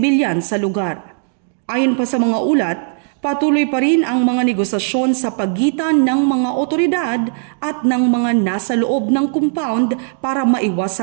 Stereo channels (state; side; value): silent; left; digital silence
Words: sa lugar. Ayon pa sa mga ulat, patuloy pa rin ang mga negosasyon sa pagitan ng mga otoridad at ng mga nasa loob ng compound para